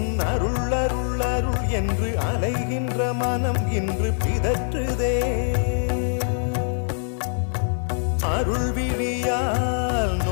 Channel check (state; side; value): silent; right; 63 dB below the other